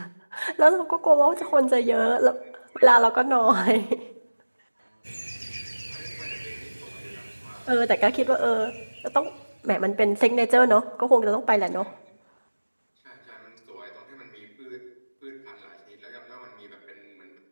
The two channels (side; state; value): both; inverted; correlation -1.00